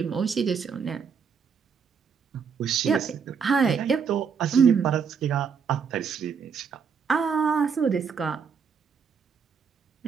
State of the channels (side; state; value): left; quieter; 6.4 dB